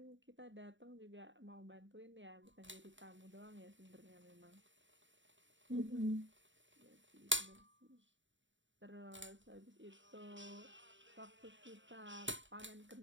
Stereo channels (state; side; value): late; left; 0.55 ms